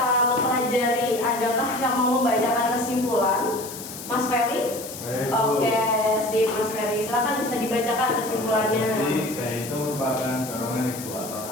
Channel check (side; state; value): left; noise; hiss, 11 dB below the sound